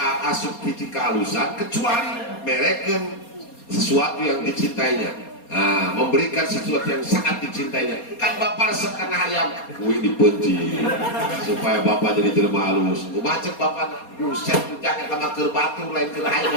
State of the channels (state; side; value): late; right; 4.2 ms